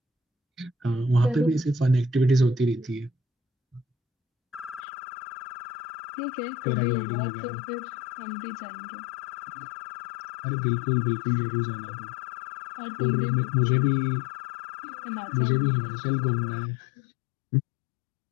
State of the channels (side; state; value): right; drops out; at 4.8 s